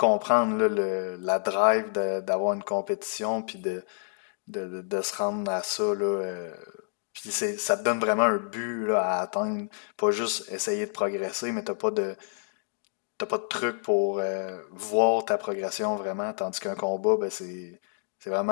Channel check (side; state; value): right; silent; digital silence